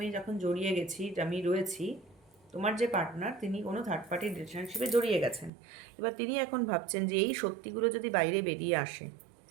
যখন জড়িয়ে গেছি, আমি রয়েছি, তোমার যে পার্টনার তিনি কোনো থার্ড পার্টি রিলেশনশিপে জড়িয়ে গেছেন। এবার তিনি এখন ভাবছেন যে এই সত্যিগুলো যদি বাইরে বেরিয়ে আসে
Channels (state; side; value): drops out; left; at 5.5 s